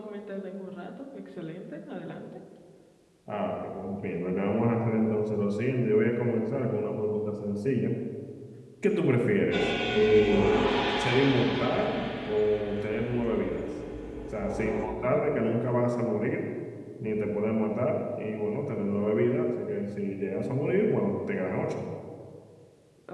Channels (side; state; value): both; identical; correlation 1.00